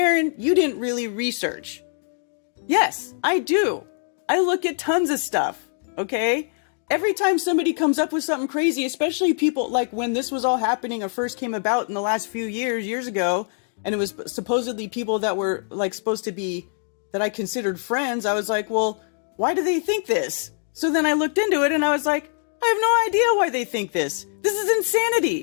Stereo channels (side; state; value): right; silent; 63 dB below the other